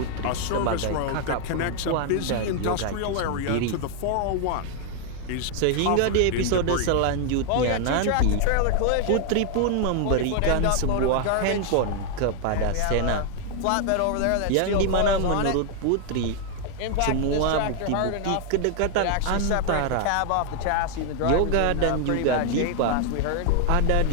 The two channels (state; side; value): different; both; correlation 0.01